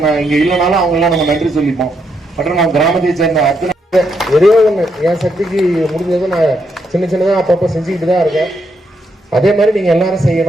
இங்க இல்லைனாலும் அவங்க எல்லாம் நம்ம நன்றி சொல்லிப்போம். மற்றும் நம்ம கிராமத்தை சேர்ந்த அத்தனை ஒரே ஒண்ணு, என் சக்திக்கு முடிஞ்சதை நான் சின்ன சின்னதா அப்பப்ப செஞ்சுக்கிட்டு தான் இருக்கேன். அதே மாதிரி நீங்க எல்லாரும்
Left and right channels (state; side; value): normal; both; correlation 0.78